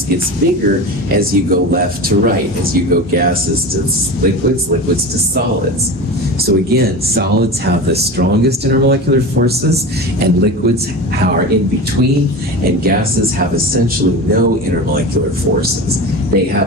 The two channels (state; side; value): normal; both; correlation 0.28